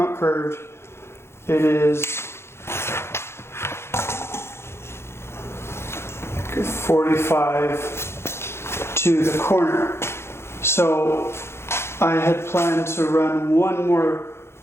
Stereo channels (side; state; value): right; late; 0.12 ms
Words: curved. It is 45 to the corner. So I had planned to run 1 more